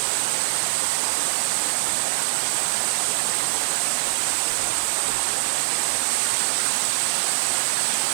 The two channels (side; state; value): left; silent; 63 dB below the other